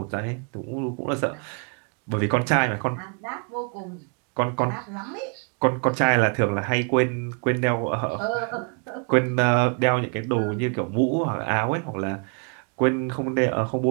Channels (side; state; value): left; quieter; 38.4 dB